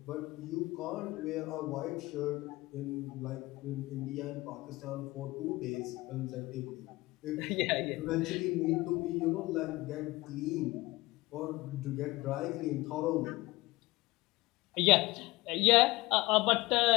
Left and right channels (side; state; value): right; quieter; 20.7 dB